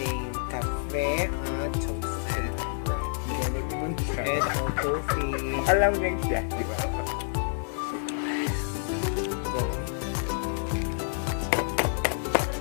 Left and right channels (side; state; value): right; silent; 59 dB below the other